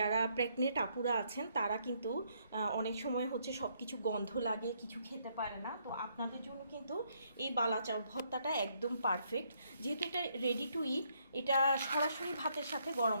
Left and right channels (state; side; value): inverted; both; correlation -0.71